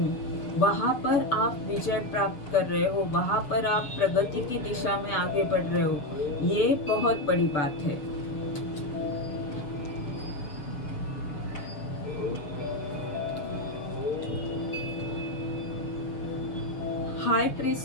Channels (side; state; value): right; late; 6.9 ms